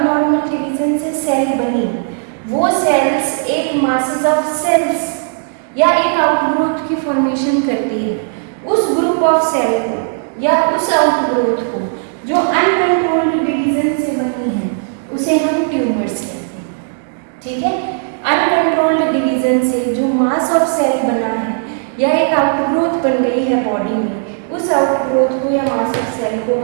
डिवीजन से सेल बनी, वो सेल्स एक मासेस ऑफ सेल्स या एक आउटग्रोथ की फॉर्मेशन करती है। उस ग्रुप ऑफ सेल को या उस आउटग्रोथ को जो अनकंट्रोल्ड डिवीजन से बनी है उसे हम ट्यूमर्स कहते हैं, ठीक है। अनकंट्रोल्ड डिवीजन से जो मास ऑफ सेल बना है या एक आउटग्रोथ बन गई है बॉडी में, उस आउटग्रोथ को या मास ऑफ सेल को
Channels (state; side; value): silent; left; digital silence